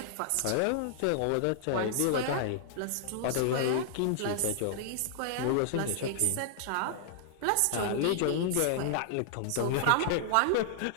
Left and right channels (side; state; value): both; different; correlation -0.01